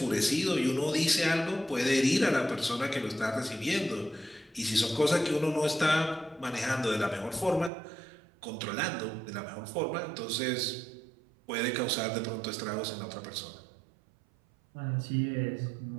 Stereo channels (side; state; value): left; drops out; at 7.7 s